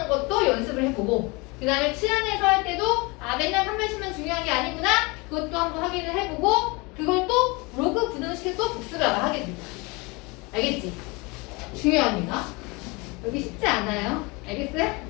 것도 연습을 해보고 그 다음에 치안에서 할 때도 맨날 한 번씩만 중요한 게 아니구나 그것도 한번 확인을 해보고 그걸 또 로그 부등식에 또 복습을 하게 됩니다. 알겠지? 중요합니다. 여기 쉽지 않아요. 알겠어요?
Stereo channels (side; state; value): right; quieter; 26.6 dB